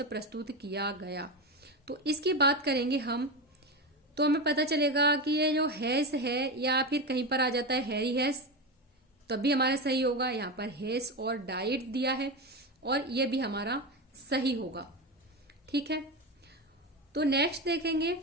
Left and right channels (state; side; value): normal; both; correlation 0.18